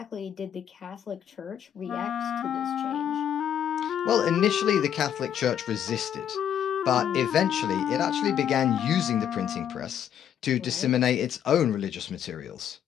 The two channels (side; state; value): right; quieter; 9.5 dB